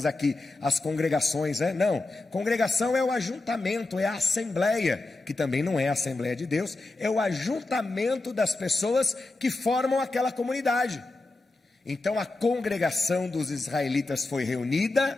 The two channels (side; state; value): right; quieter; 3.2 dB